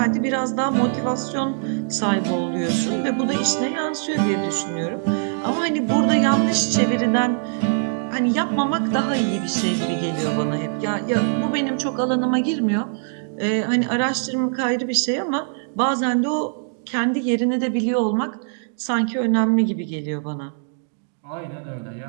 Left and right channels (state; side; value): silent; left; digital silence